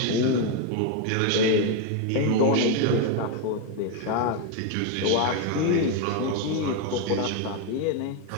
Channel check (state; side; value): different; both; correlation 0.01